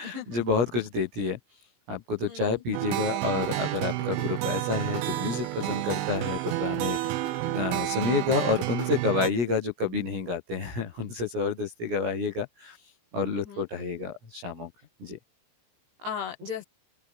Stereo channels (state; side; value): late; left; 17 ms